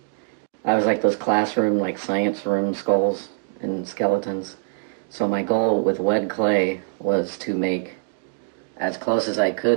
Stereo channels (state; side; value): silent; left; digital silence